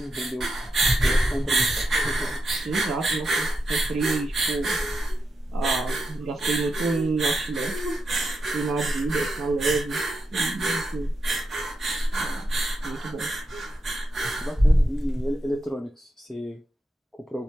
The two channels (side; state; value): both; normal; correlation 0.85